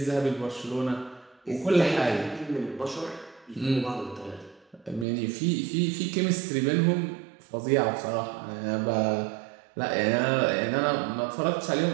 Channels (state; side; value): drops out; left; at 5.1 s